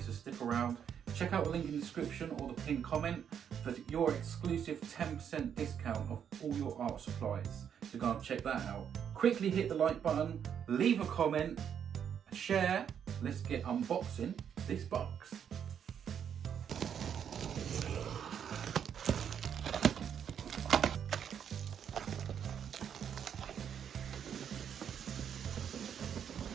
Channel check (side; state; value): left; quieter; 8.3 dB